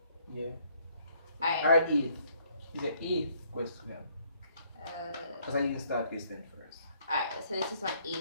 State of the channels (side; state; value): both; inverted; correlation -0.66